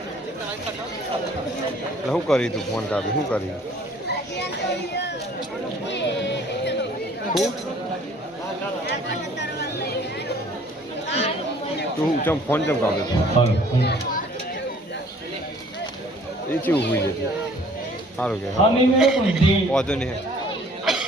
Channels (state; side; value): normal; both; correlation 0.55